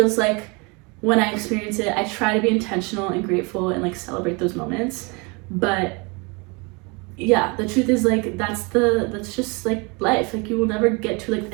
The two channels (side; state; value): left; quieter; 29.3 dB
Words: like when I experience it, I try to be intentional and grateful and like celebrate those moments. But yeah, the truth is like, that's just like life. Like, you will never get to like